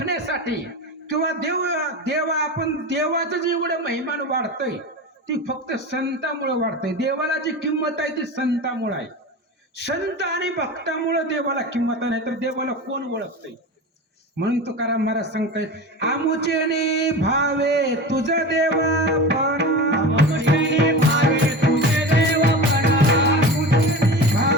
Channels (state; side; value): normal; both; correlation 0.29